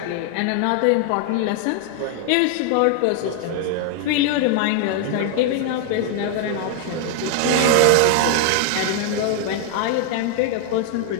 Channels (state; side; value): different; both; correlation 0.00